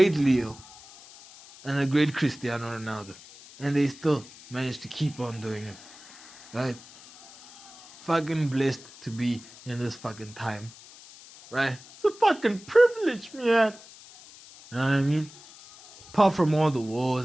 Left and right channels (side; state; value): left; noise; hiss, 20 dB below the sound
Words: Leo and the great Cristiano Ronaldo. And they still managed to keep on doing it, right? Fucking blessed to be in this fucking time, right? It's a fucking privilege, man. You know what I mean? Apart from all the